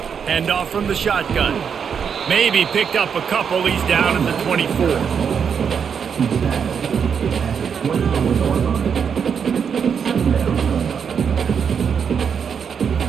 Handoff from the shotgun. Maybe picked up a couple. He's down at the 24.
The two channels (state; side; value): quieter; left; 7.0 dB